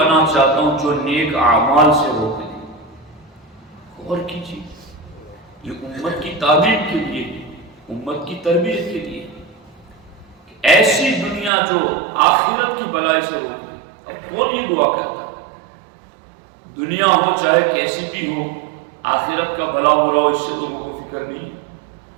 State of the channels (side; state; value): left; drops out; at 11.5 s